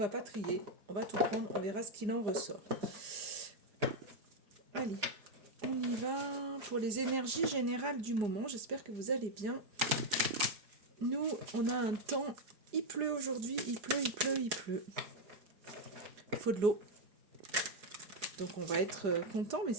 pas trier, on va tout prendre, on verra ce qu'il en ressort. Allez, on y va pour les énergies générales du moment. J'espère que vous allez bien. Nous, on a un temps, il pleut aujourd'hui, il pleut, il pleut, il pleut. Il faut de l'eau. Donc on va être content, mais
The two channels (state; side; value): late; left; 4.9 ms